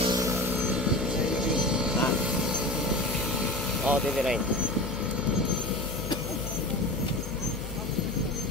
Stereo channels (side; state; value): left; noise; hum, 9 dB below the sound